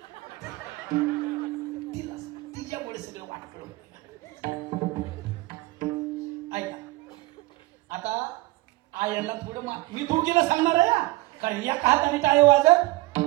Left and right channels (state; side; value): quieter; left; 20.3 dB